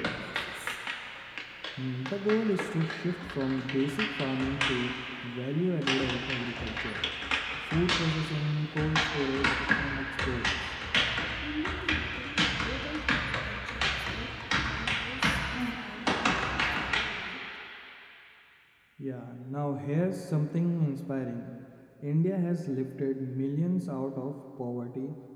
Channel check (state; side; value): identical; both; correlation 1.00